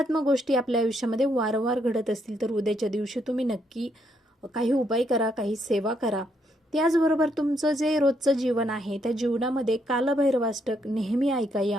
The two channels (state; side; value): normal; both; correlation 0.74